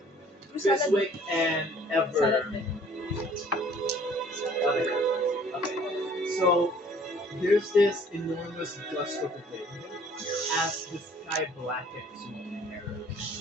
Fiswick, and Ever. Okay. So there's this enormous gust of wind as the sky blackens with terror.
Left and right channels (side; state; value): both; normal; correlation 0.55